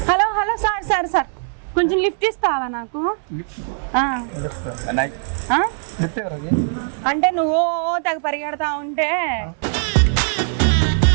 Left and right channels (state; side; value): silent; left; 65 dB below the other